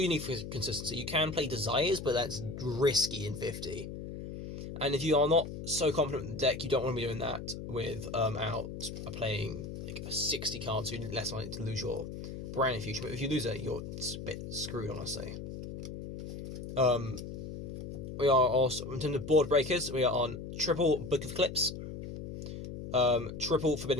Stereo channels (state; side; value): noise; left; hum, 8 dB below the sound